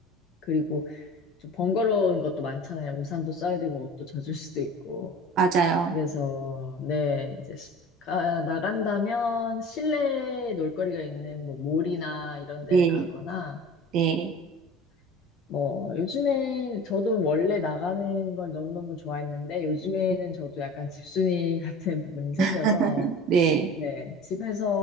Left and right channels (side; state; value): both; normal; correlation 0.38